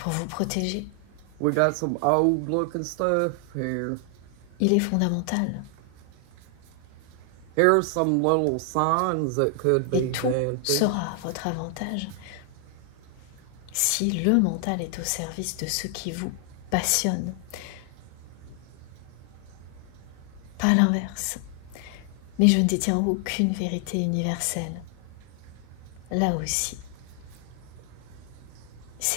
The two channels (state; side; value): different; both; correlation 0.00